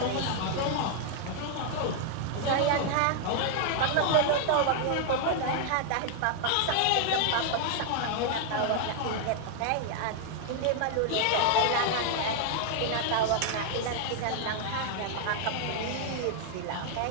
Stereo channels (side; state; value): both; different; correlation 0.00